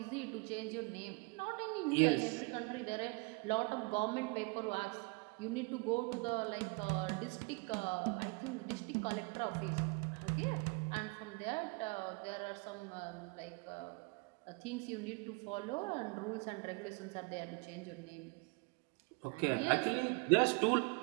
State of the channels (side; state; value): left; quieter; 30.6 dB